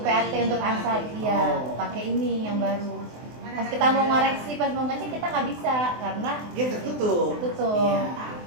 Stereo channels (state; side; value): late; left; 24 ms